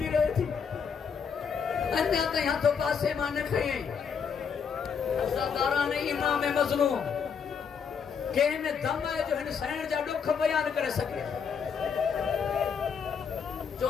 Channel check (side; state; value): right; quieter; 6.6 dB